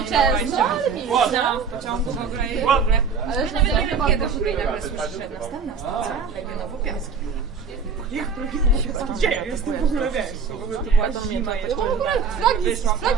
często, ale nie. No, w pociągu w ogóle i w ogóle. Ale nawet nie wiem kiedy w ogóle nagle słyszę, że następna stacja, Legionowo-Piaski. Jak gdzie ja jestem w ogóle, wiesz? W ogóle to była zima jeszcze. No bo w ogóle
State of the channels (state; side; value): quieter; left; 5.4 dB